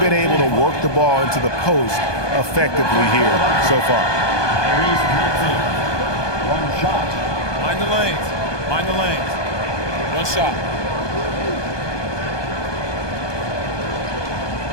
able to work the ball into the post effectively here so far. One shot. Mind the lanes. Mind the lanes. One shot.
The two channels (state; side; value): late; right; 1.2 ms